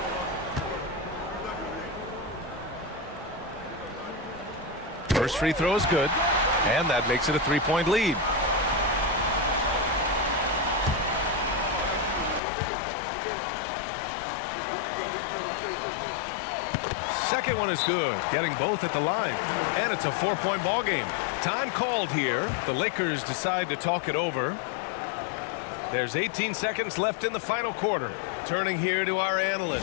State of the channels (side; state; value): right; drops out; at 12.4 s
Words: First free throw is good, and that makes it a 3-point lead. Second one is good, getting both at the line, and it's a 4-point ball game. Time called here. The Lakers decide to talk it over. There's 18 seconds left in the final quarter. Turning here to our